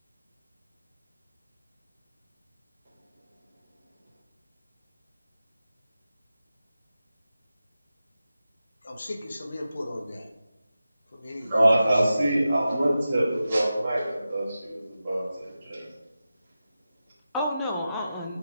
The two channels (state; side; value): inverted; both; correlation -0.92